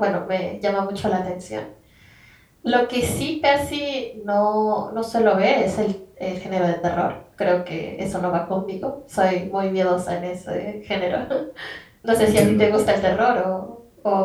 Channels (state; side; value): identical; both; correlation 1.00